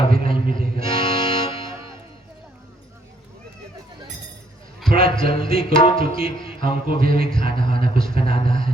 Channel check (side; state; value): both; normal; correlation 0.68